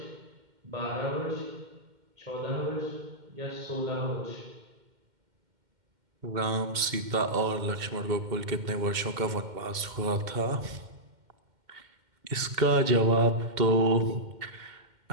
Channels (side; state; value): left; late; 2.1 ms